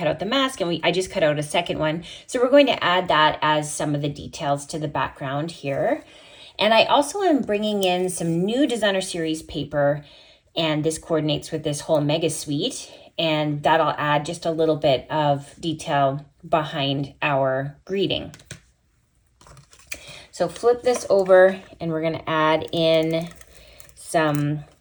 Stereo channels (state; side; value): identical; both; correlation 1.00